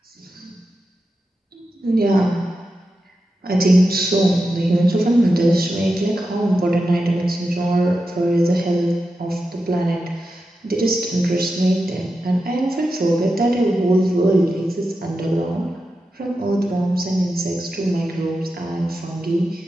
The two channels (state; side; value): normal; both; correlation 0.90